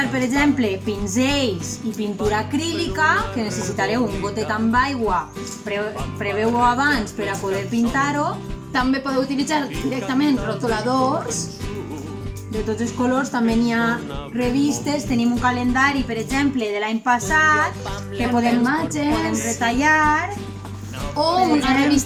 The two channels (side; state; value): both; identical; correlation 1.00